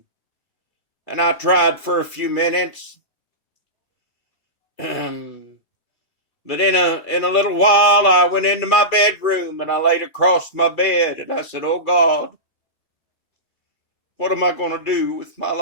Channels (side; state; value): right; late; 2.4 ms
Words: I tried for a few minutes. But in a little while I went into my bedroom and I laid across my bed and I said, oh God, what am I going to do with my